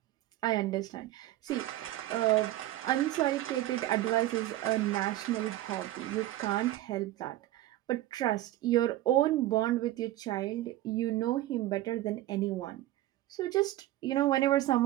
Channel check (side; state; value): left; quieter; 15.2 dB